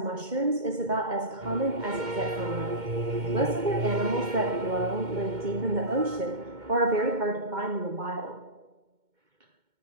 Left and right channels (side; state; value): left; late; 2.2 ms